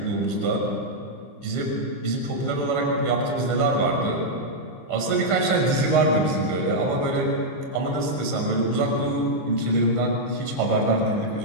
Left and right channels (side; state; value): right; late; 15 ms